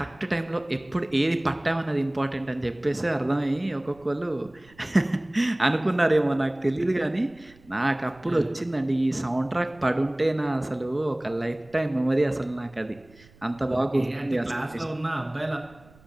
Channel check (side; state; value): right; noise; rumble, 27 dB below the sound